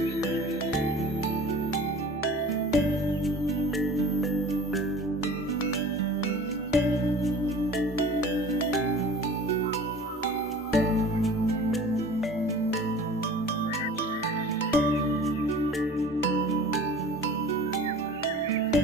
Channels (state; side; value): normal; both; correlation 0.43